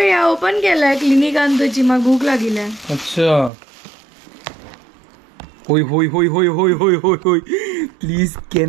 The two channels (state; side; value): drops out; left; at 3.5 s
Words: हांव ओपन केलाय क्लिनिकान तुजी म्हाका भूक लागिल्या अच्छा होय होय होय होय होय होय होय होय please